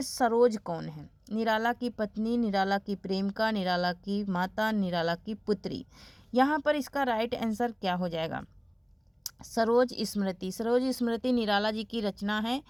सरोज कौन है? निराला की पत्नी, निराला की प्रेमिका, निराला की माता, निराला की पुत्री। यहाँ पर इसका राइट आंसर क्या हो जाएगा? सरोज स्मृति निराला जी की रचना है।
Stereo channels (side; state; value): both; identical; correlation 1.00